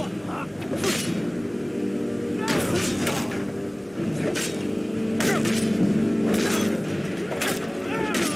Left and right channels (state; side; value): noise; right; hum, 29 dB below the sound